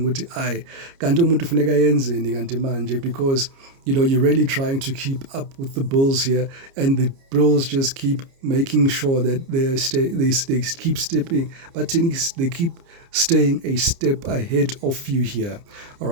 because you're really trying to keep up with the bills here, and the bills just keep making sure that they keep stepping, but they keep staying a step ahead of you here. All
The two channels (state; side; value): late; left; 29 ms